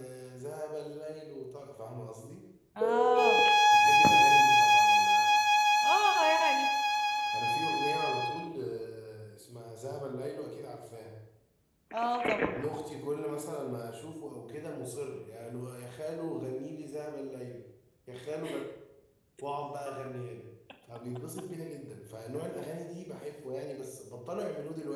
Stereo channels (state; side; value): identical; both; correlation 1.00